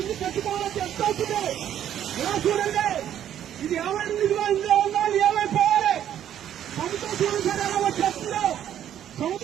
ఇల్లు కట్టుకోవాలని ఎంత అవుతుంది? ఇలా చూడండి. ఇది ఏమైనా ఇదిగా ఇందులో ఉన్నా ఏమైపోవాలి? సముద్రం చూడండి సార్ ఎలా వచ్చేస్తుందో.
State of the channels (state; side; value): quieter; left; 10.6 dB